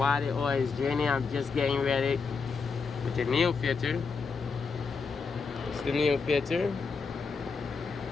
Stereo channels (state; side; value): quieter; right; 5.0 dB